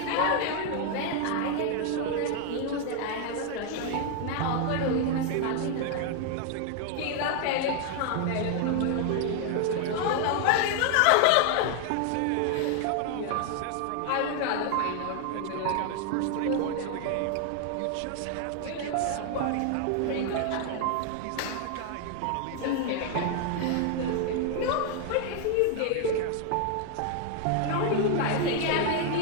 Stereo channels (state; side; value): different; both; correlation 0.00